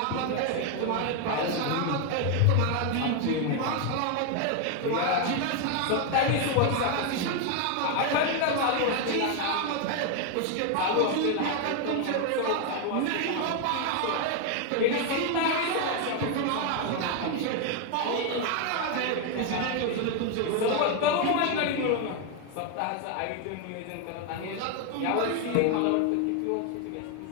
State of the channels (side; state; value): both; different; correlation 0.01